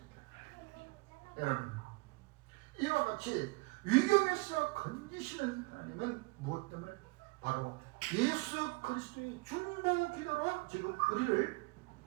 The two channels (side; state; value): left; quieter; 26.1 dB